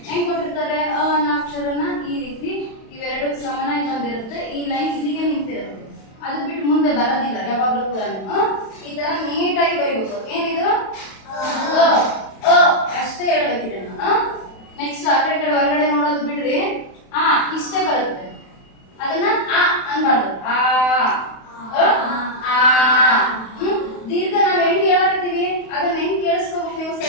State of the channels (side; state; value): right; late; 31 ms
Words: ಹೆಂಗ್ ಕೊಟ್ಟಿರ್ತಾರೆ. ಅನ್ನೋ ಅಕ್ಷರನ ಈ ರೀತಿ ಇವೆರಡು ಸಮನಾಗಿ ಬಂದಿರುತ್ತೆ. ಈ ಲೈನ್ ಇಲ್ಲಿಗೆ ನಿಂತಿರುತ್ತೆ, ಅದು ಬಿಟ್ಟು ಮುಂದೆ ಬರೋದಿಲ್ಲ ಯಾವಾಗ್ಲೂ ಕೂಡ. ಈ ತರ ನೀಟಾಗಿ ಬರೀಬೇಕು. ಏನಿದು ಅಷ್ಟೇ ಹೇಳ್ಬೇಕಿದೆ. ನೆಕ್ಸ್ಟ್ ಆ ಕಡೆ ಹೊರಗಡೆ ನೋಡೋದು ಬಿಡ್ರಿ. ಇಷ್ಟೇ ಬರುತ್ತೆ, ಅದನ್ನ ಅನ್ಬಾರ್ದು. ದೀರ್ಘ ನಾವ್ ಹೆಂಗ್ ಹೇಳಕತ್ತೀವಿ ಅದನ್ನ ಹೆಂಗ್ ಕೇಳಿಸ್ಕೋಬೇಕು ನೀವು,